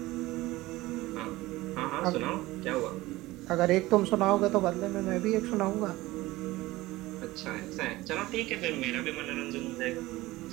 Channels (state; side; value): quieter; left; 18.8 dB